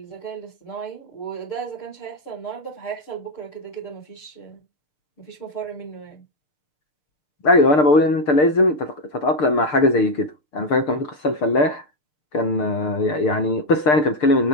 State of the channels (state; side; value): late; right; 6.7 ms